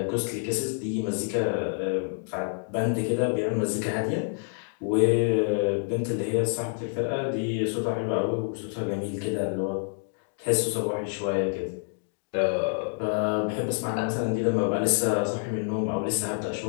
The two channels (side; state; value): right; silent; 60 dB below the other